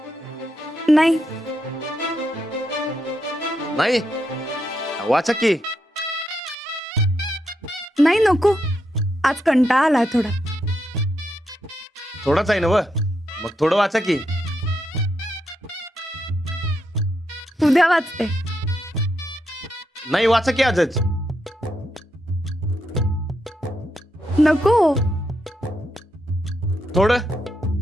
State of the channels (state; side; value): normal; both; correlation 0.82